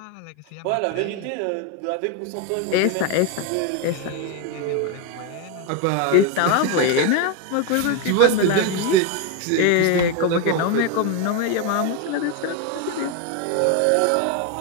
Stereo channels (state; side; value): different; both; correlation 0.02